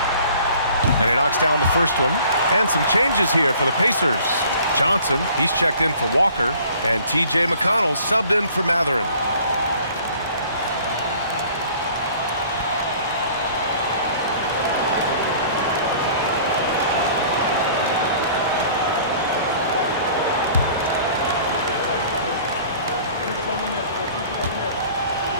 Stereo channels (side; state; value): both; inverted; correlation -0.51